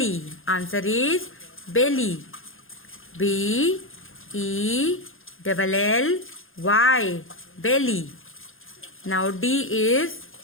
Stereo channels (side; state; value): right; late; 0.60 ms